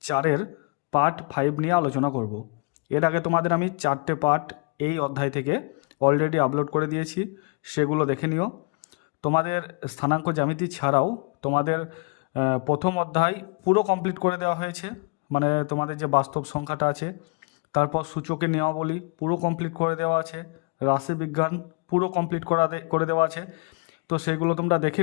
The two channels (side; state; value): right; quieter; 33.1 dB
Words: 4-এর পার্ট 5 নিয়ে আলোচনা করব। এর আগে তোমাদের আমি 4টে পার্ট এই অধ্যায় থেকে অলরেডি আপলোড করে দিয়েছি, সেগুলো দেখে নিও। তোমাদের স্থানাঙ্ক জ্যামিতি ছাড়াও তোমাদের প্রথম অধ্যায় পুরো কমপ্লিট করে দেওয়া হয়েছে, মানে তোমাদের যে বাস্তব সংখ্যাটা আছে, তারপর সূচকের নিয়মাবলী পুরো কমপ্লিট করে দেওয়া আছে, রাশিবিজ্ঞান পুরো কমপ্লিট করে দেওয়া আছে। তো সেগুলো তোমরা দেখে